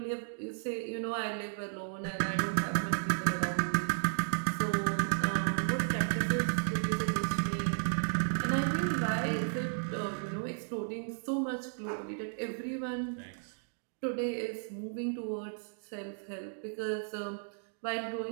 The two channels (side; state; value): left; silent; digital silence